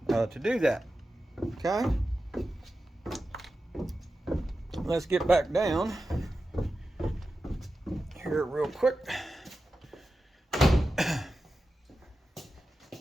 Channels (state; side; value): normal; both; correlation 0.92